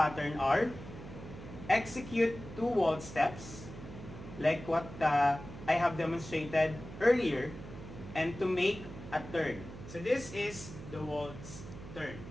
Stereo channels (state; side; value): noise; right; hum, 13 dB below the sound